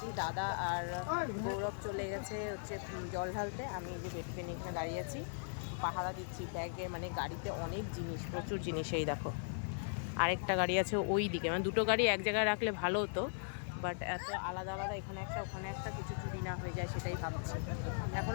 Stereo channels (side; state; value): right; silent; 52 dB below the other